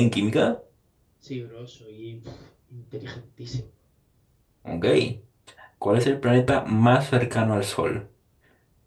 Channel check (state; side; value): identical; both; correlation 1.00